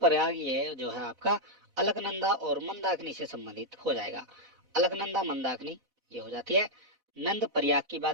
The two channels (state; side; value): late; left; 4.0 ms